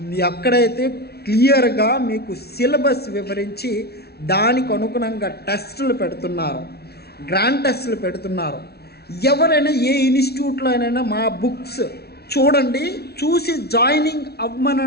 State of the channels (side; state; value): right; late; 0.46 ms